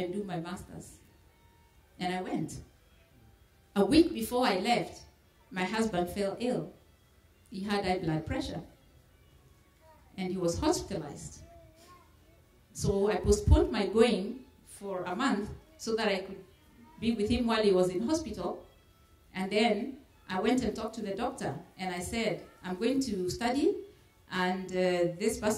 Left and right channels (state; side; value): identical; both; correlation 1.00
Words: do my master's. And I went. A week before I left, my husband fell ill. He had high blood pressure. And he was hospitalized. So I postponed my going for a month so that I could be with him while he was in hospital. And then I went and talked to the doctor. And I said, I'm going to study, and this